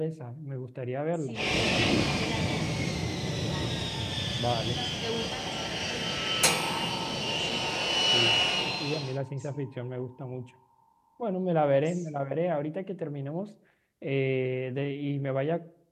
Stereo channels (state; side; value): identical; both; correlation 1.00